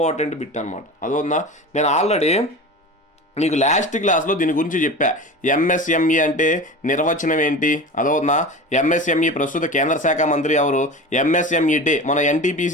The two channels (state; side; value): normal; both; correlation 0.32